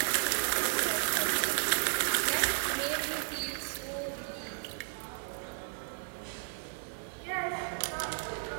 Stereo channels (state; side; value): silent; left; digital silence